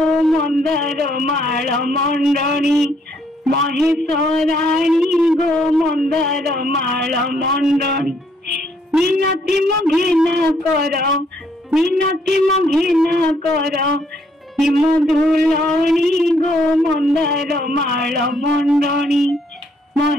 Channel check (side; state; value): both; normal; correlation 0.69